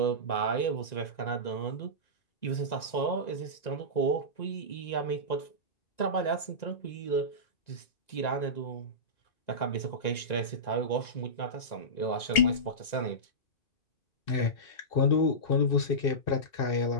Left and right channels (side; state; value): right; late; 1.9 ms